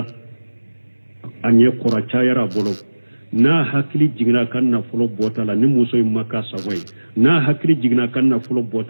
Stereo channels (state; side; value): inverted; both; correlation -1.00